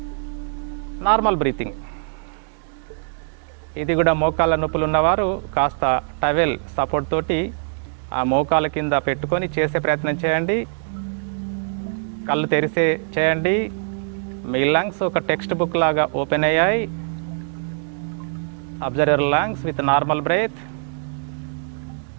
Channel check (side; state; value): left; silent; digital silence